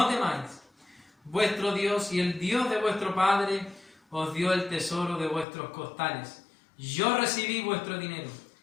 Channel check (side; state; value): right; drops out; at 5.5 s